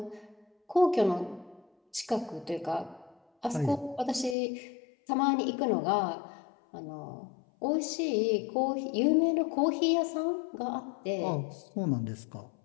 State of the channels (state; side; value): drops out; right; at 4.4 s